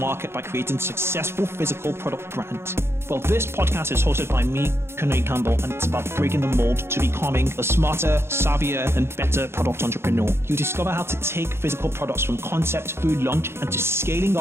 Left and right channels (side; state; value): left; late; 0.12 ms